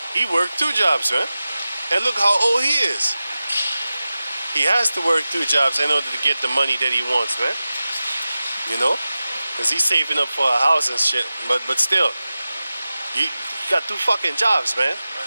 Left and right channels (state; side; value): inverted; both; correlation -0.95